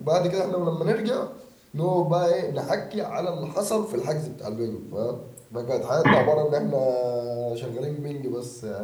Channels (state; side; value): identical; both; correlation 1.00